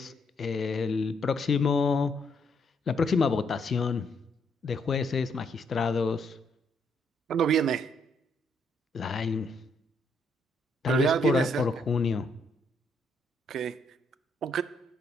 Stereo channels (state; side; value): normal; both; correlation 0.72